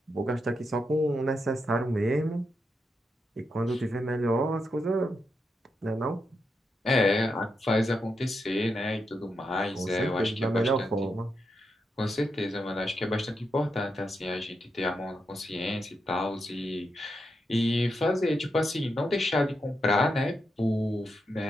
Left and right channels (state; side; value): normal; both; correlation 0.84